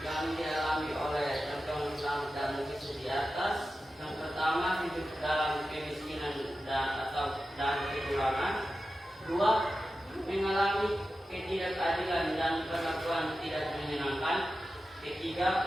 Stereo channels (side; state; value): both; normal; correlation 0.93